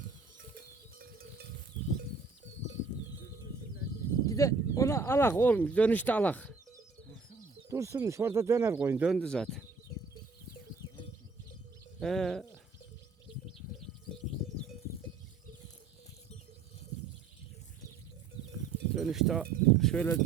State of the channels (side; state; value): left; quieter; 4.8 dB